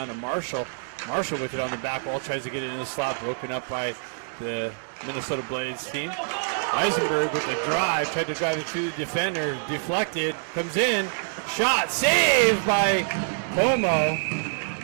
to Marshall. Marshall with it on the back wall, tries to get it in the slot, broken up by the Minnesota Blades team. Eisenberg with the drive, tried to drive it through the defender, deflected, comes in, shot, saved by Como.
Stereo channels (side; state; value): left; silent; 61 dB below the other